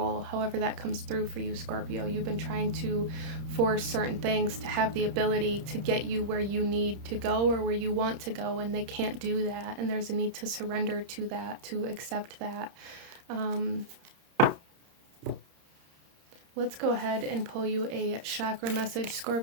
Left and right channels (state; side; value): late; left; 30 ms